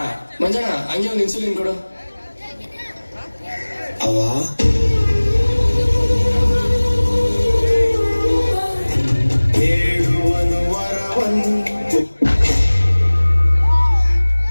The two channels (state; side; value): inverted; both; correlation -1.00